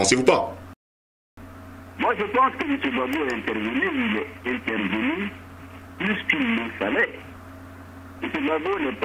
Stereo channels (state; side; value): identical; both; correlation 1.00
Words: pas? Moi, je pense que M. Gbagbo est intervenu, il est intervenu plus qu'il le fallait. M. Gbagbo n'est